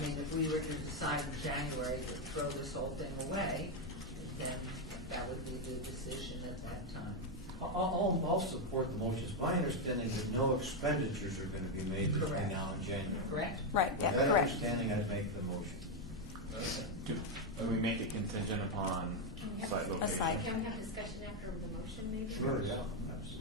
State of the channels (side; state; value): both; normal; correlation 0.04